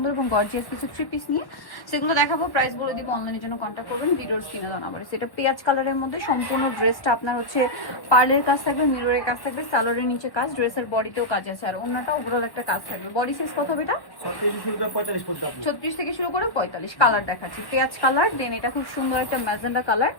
এবং গর্জিয়াস কিছু থ্রি পিস নিয়ে, সেগুলো দেখাবো। প্রাইস বলে দিব, অনলাইনের জন্য কন্ট্যাক্ট করবেন ভিডিওর স্ক্রিনে দেওয়া নাম্বারে। সেটা পেঁয়াজ কালারের মধ্যে সম্পূর্ণ ড্রেসটা আপনার হচ্ছে পার্লের কাজ থাকবে, মিররের কাজ থাকবে, সালোয়ারের নিচে কাজ, ড্রেসের বডিতেও কাজ আছে, আর অন্যটা ওভারঅল একটা কাজ থাকবে। বডি সাইজ কত হবে এটা? 36 থেকে শুরু করে 45। কালার দেখাচ্ছি পেঁয়াজ কালার, দেন এটা খুব সুন্দর একটা ম্যাজেন্ডা কালার।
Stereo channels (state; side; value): late; right; 1.1 ms